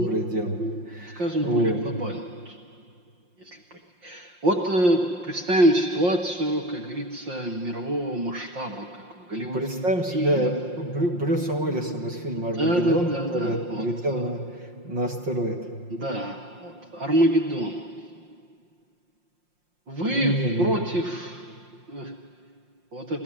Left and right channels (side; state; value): left; late; 5.6 ms